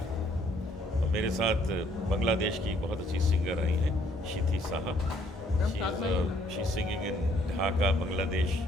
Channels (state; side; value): normal; both; correlation 0.66